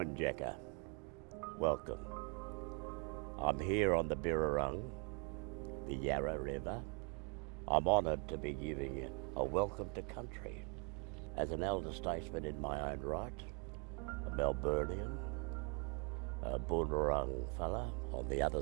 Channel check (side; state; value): left; quieter; 33.2 dB